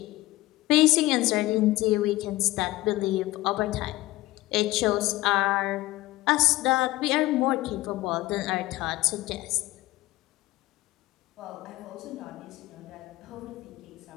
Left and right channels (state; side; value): quieter; right; 18.3 dB